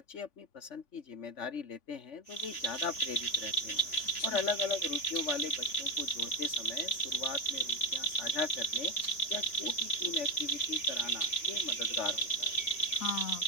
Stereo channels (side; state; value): right; late; 3.5 ms